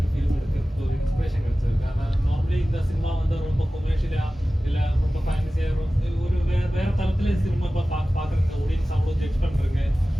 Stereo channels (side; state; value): both; normal; correlation 0.96